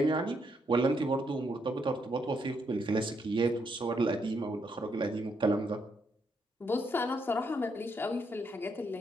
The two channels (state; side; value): normal; both; correlation 0.76